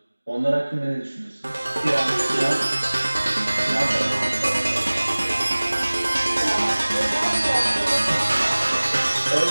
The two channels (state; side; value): inverted; both; correlation -1.00